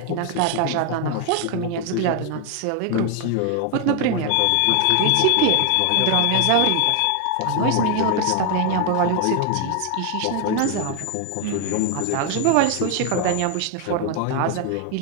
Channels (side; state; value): both; different; correlation 0.01